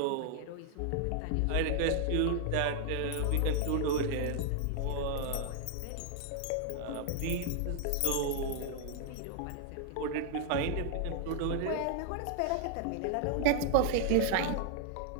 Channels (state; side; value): different; both; correlation 0.00